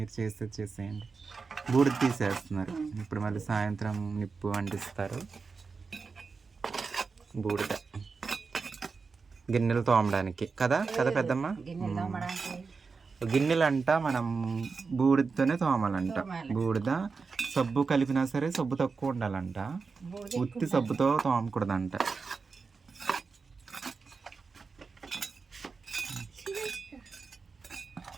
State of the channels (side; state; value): left; quieter; 4.8 dB